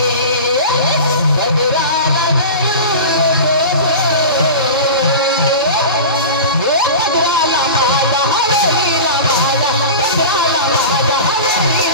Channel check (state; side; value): inverted; both; correlation -0.31